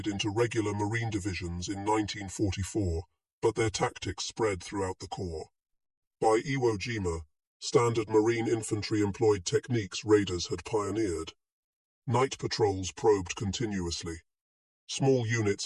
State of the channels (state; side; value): identical; both; correlation 1.00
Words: into regular Marine divisions in 1944, but their tactics spread throughout the Corps. By Iwo Jima, standard Marine infantry employed techniques raiders had pioneered. Night patrols probed continuously. Small